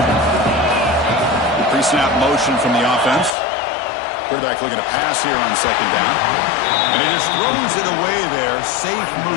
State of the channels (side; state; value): right; drops out; at 3.4 s